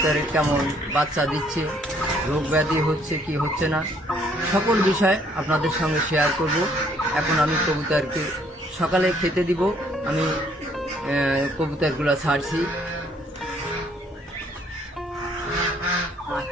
কেমন বাচ্চা দিচ্ছে, রোগ ব্যাধি হচ্ছে কি হচ্ছে না, সকল বিষয় আপনাদের সঙ্গে শেয়ার করব। এখন আমি কবুতরকে সকালে খেতে দিব। আমি কবুতরগুলো ছাড়ছি।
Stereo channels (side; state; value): both; normal; correlation 0.64